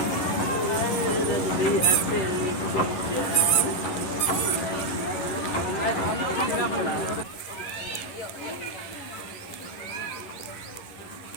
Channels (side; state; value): right; late; 11 ms